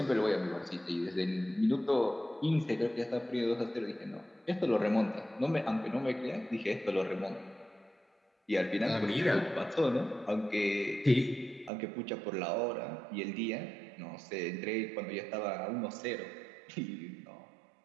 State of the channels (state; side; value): drops out; left; at 11.7 s